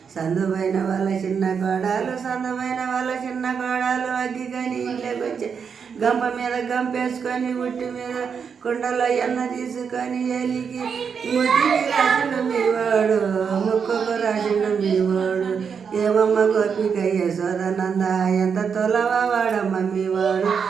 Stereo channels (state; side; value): quieter; left; 6.5 dB